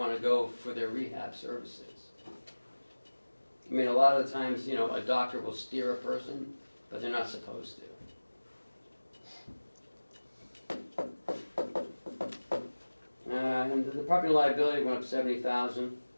to go for their rehab services. I mean, a lot of the times, a doctor will steer a person, but they're not supposed to. And the property liability went up 70,000.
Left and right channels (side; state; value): both; inverted; correlation -1.00